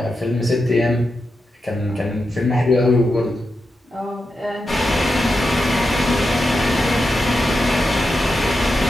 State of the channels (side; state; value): both; normal; correlation 0.88